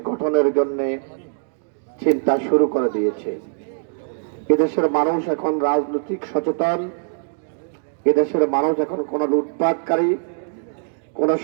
গঠনের জন্য চিন্তা শুরু করে দিয়েছে। এদেশের মানুষ এখন রাজনৈতিক সচেতন। এদেশের মানুষ এখন কোনো লুটপাটকারী, কোনো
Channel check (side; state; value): left; silent; digital silence